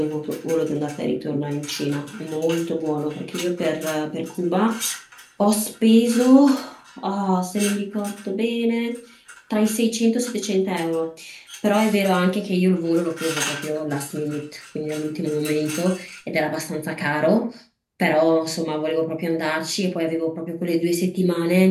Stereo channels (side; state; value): both; identical; correlation 1.00